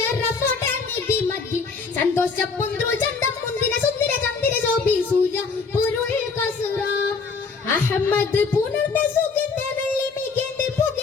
നിധി മതി സന്തോഷ പുന്ത്രു ചന്തം മുന്തിര സുന്ദര ചന്ദിര ശോഭി സൂര്യ പൊരുൾ കസുറ അഹമ്മദ് പുണർന്ന സുഗന്ധ വെള്ളി മികേന്ദ്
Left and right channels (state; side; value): quieter; right; 4.8 dB